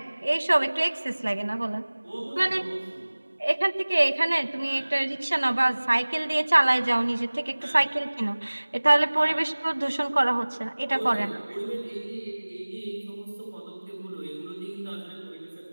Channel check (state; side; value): inverted; both; correlation -1.00